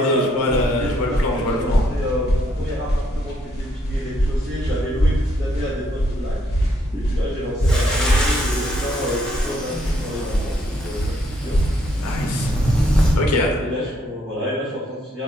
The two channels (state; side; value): normal; both; correlation 0.71